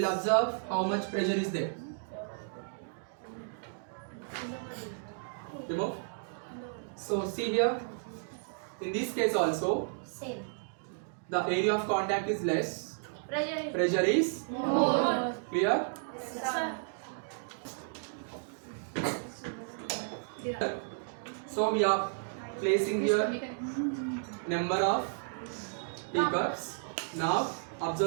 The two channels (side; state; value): left; silent; digital silence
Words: observe how much pressure is there. Remove. So see here. In this case also, Same. the area of contact is less. Pressure. Pressure is More. clear. So we are placing here number of teacups. Now